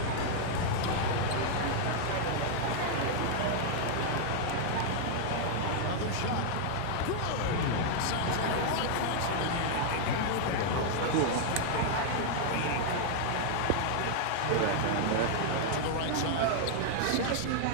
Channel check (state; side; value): different; both; correlation 0.00